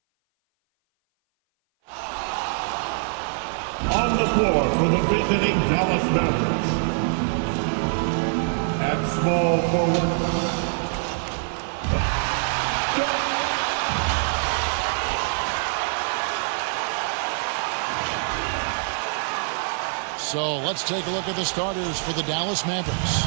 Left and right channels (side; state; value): left; silent; 57 dB below the other